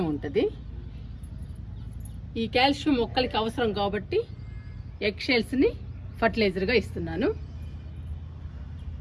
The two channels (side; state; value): both; identical; correlation 1.00